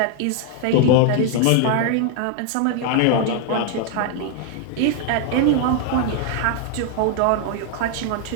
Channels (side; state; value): both; different; correlation 0.00